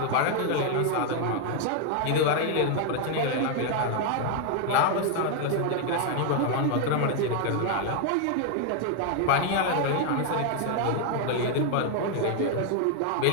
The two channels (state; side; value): different; both; correlation 0.00